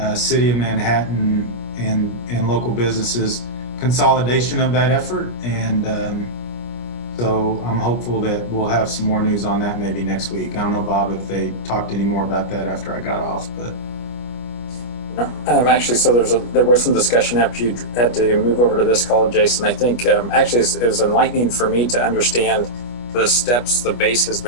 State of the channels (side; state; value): right; late; 25 ms